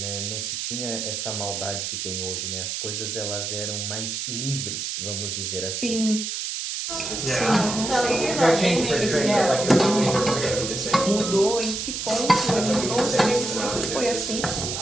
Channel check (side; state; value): right; noise; hiss, 3 dB below the sound